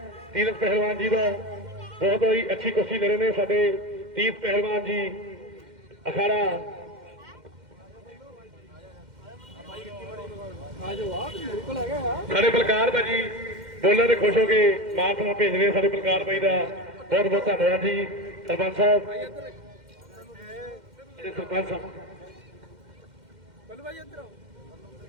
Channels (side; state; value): left; late; 2.1 ms